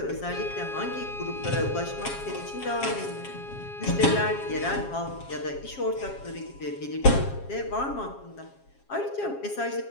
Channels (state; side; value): late; right; 7.3 ms